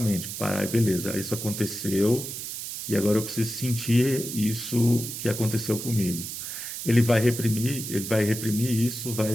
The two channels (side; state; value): right; noise; hiss, 7 dB below the sound